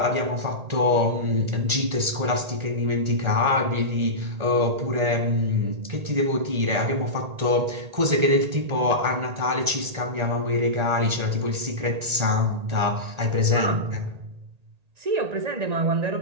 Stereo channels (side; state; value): left; late; 1.8 ms